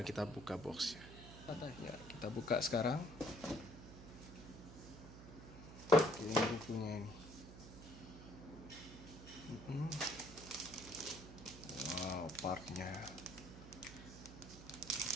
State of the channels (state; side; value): noise; right; hum, 13 dB below the sound